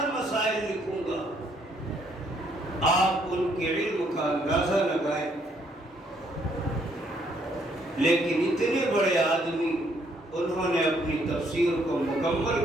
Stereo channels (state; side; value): normal; both; correlation 0.69